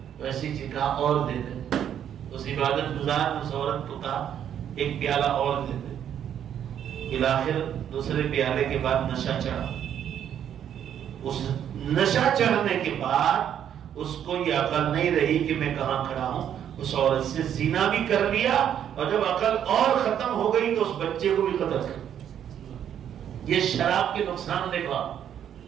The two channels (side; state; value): left; quieter; 9.5 dB